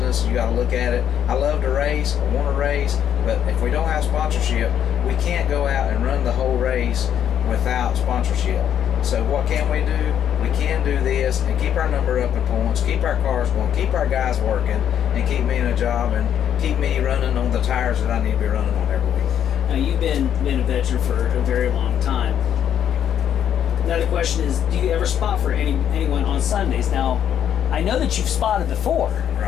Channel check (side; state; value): right; quieter; 9.6 dB